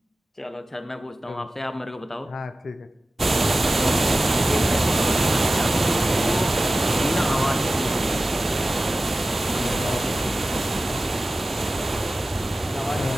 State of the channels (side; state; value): both; normal; correlation 0.95